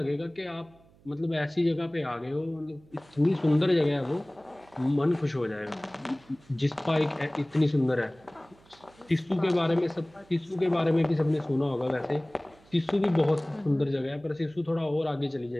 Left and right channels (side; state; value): right; noise; hum, 28 dB below the sound